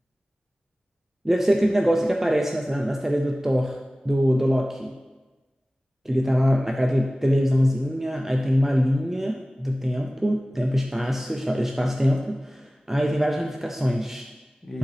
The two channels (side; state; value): both; normal; correlation 0.97